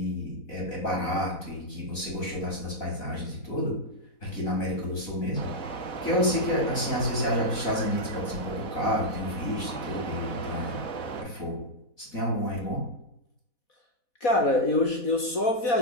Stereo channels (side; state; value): right; late; 4.1 ms